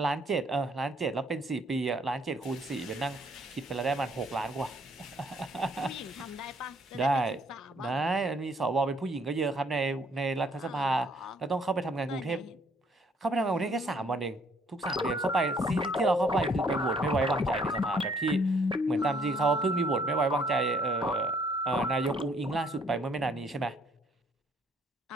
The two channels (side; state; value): both; normal; correlation 0.64